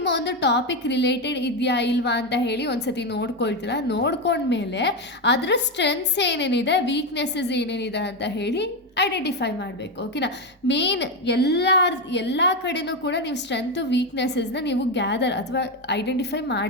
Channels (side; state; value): both; normal; correlation 0.10